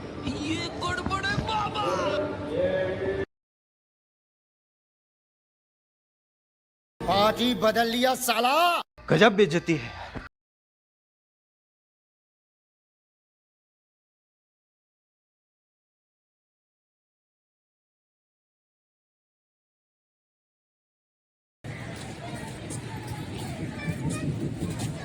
पार्टी बदल लिया साला। गजब बेइज्जती है।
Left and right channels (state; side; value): identical; both; correlation 1.00